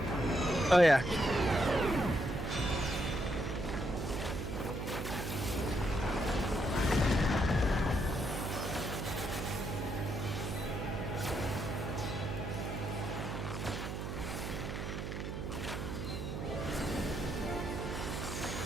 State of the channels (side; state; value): right; noise; hum, 4 dB below the sound